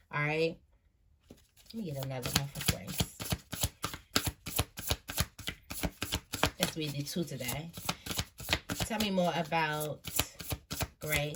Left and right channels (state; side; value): identical; both; correlation 1.00